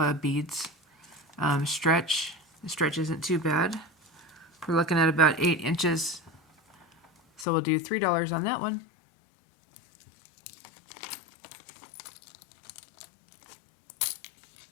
beads. Stretch. The stretch isn't too bad. We're looking at about 8 inches. So we'll do $3 on that one.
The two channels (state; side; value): drops out; right; at 7.5 s